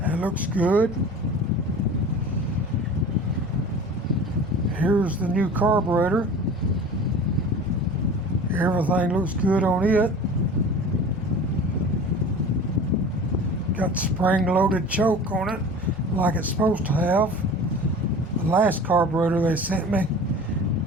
looks good. Here's the new carburetor. Everything looks good on it. Got spring-loaded choke on it like it's supposed to have. The last carburetor they sent me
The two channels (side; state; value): both; normal; correlation 0.39